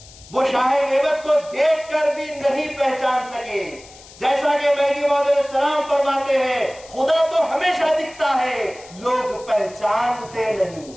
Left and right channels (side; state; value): left; noise; hiss, 21 dB below the sound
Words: وہ شاہ نعمت کو دیکھ کر بھی نہیں پہچان سکے. جیسا کہ مہدی موعود علیہ السلام فرماتے ہیں خدا تو ہمیشہ دکھتا ہے لوگ پہچانتے نہیں.